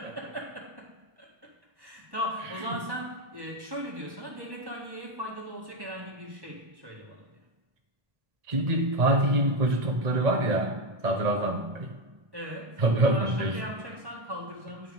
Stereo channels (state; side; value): late; left; 1.1 ms